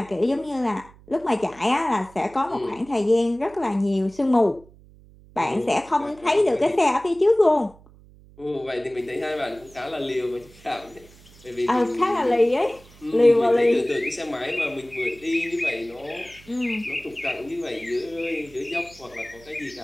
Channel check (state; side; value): noise; right; hum, 24 dB below the sound